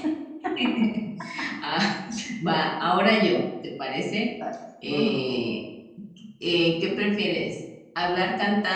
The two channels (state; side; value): identical; both; correlation 1.00